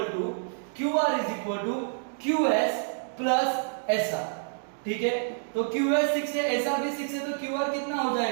to QS plus SR, ठीक है, तो QS 6 है, SR भी 6 है, तो QR कितना हो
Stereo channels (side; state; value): left; silent; digital silence